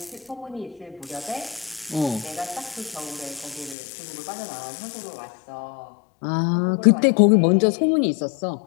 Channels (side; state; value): right; drops out; at 3.8 s